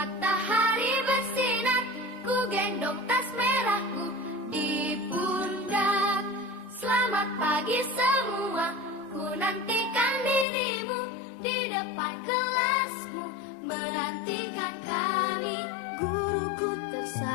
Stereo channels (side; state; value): right; drops out; at 10.5 s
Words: bersinar, ku gendong tas merahku di pundak. Selamat pagi semua, ku nantikan dirimu di depan kelasmu, menantikan kami. Guruku